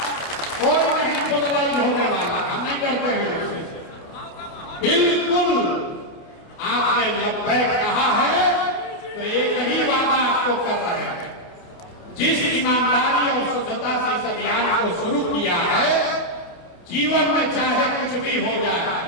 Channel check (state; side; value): late; right; 28 ms